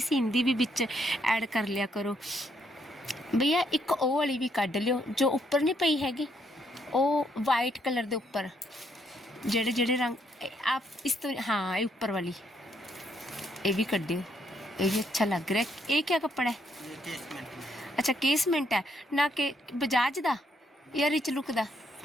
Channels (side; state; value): both; normal; correlation 0.73